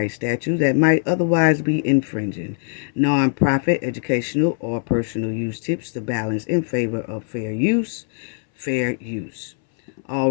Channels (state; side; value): silent; right; 62 dB below the other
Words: statute that might otherwise be infringing. Non-profit, educational, or personal use tips the balance in favor of fair use. Fair use.